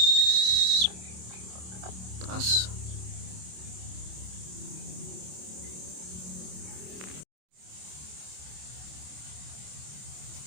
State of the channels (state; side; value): late; left; 27 ms